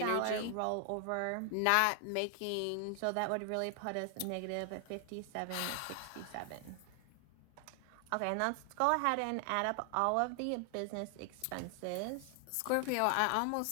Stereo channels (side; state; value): both; different; correlation 0.00